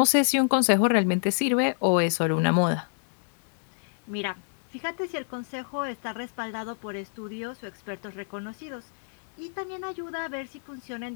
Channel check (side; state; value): right; silent; digital silence